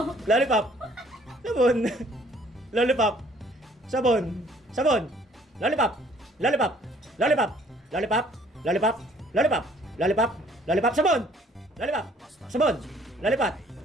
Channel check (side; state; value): both; normal; correlation 0.59